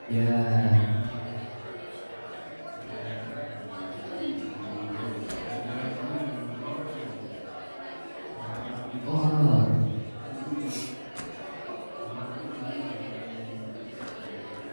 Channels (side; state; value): both; inverted; correlation -1.00